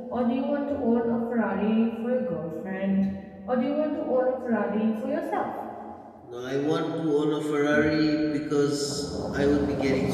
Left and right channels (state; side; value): identical; both; correlation 1.00